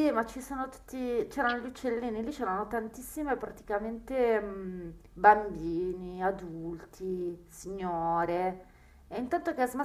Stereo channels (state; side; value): identical; both; correlation 1.00